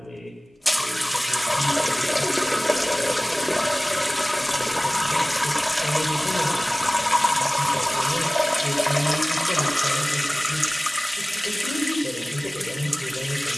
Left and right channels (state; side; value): normal; both; correlation 0.98